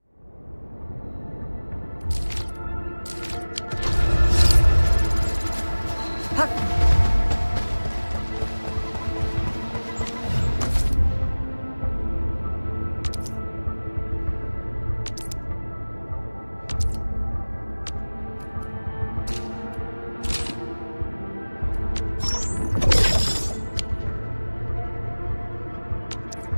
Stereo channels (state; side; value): inverted; both; correlation -1.00